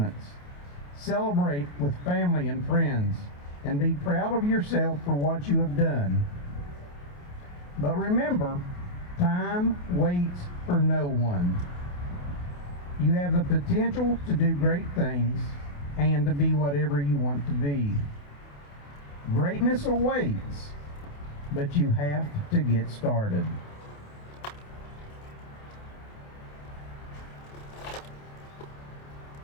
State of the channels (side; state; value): right; late; 28 ms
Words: Celebrate with family and friends, and be proud of yourself for what you have done. But remember, time waits for no one. You have the potential to do great things and to be whatever you want to be. Greatness awaits, but you have to get started.